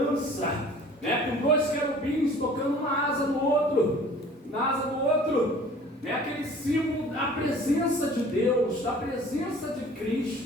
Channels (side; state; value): both; normal; correlation 0.48